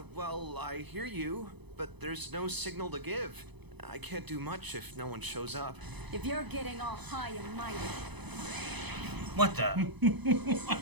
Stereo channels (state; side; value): late; left; 0.99 ms